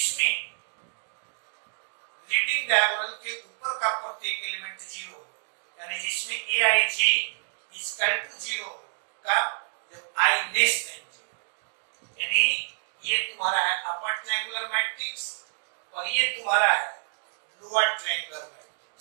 लीडिंग डायगोनल के ऊपर का प्रत्येक एलिमेंट 0 हो, यानी जिसमें Aij is equal to 0 का जब I less than 0, यानी ये तुम्हारा है अपर ट्रायंगुलर मैट्रिक्स और ये तुम्हारा है लोअर ट्रायंगुलर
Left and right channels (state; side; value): silent; left; digital silence